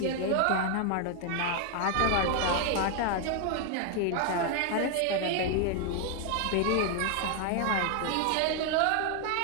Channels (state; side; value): different; both; correlation 0.00